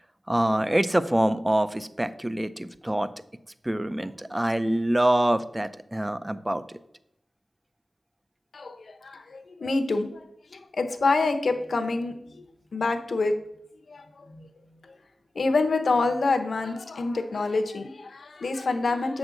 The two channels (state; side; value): normal; both; correlation 0.95